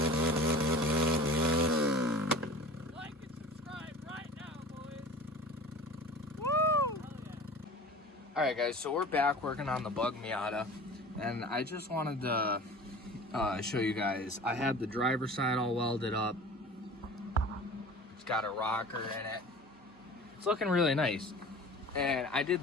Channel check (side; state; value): both; normal; correlation 0.39